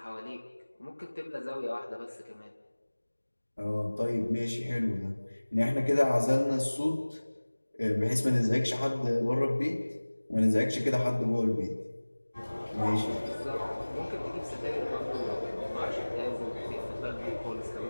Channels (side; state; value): both; inverted; correlation -1.00